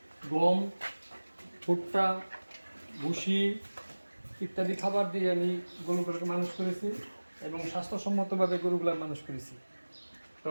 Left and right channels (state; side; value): inverted; both; correlation -1.00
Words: গম, ভুট্টা, ভুসি ইত্যাদি খাবার দিয়ে আমি গরুগুলোকে মানুষ করেছি এবং স্বাস্থ্যসম্মতভাবে গরুগুলো মানুষ করেছি। তো